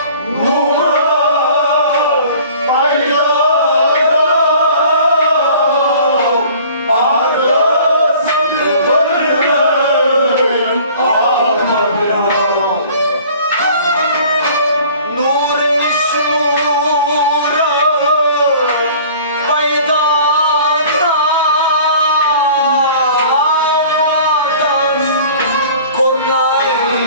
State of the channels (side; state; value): both; inverted; correlation -0.48